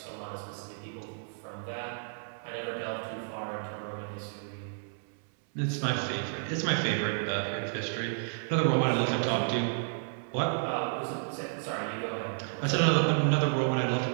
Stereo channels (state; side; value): silent; left; 57 dB below the other